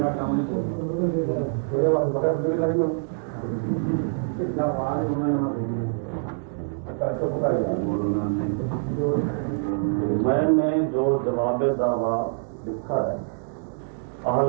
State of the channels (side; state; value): left; silent; digital silence